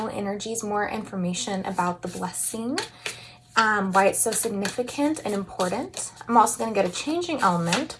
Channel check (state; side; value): identical; both; correlation 1.00